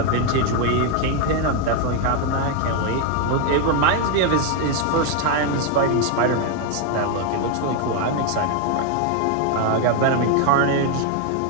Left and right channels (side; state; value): both; different; correlation 0.01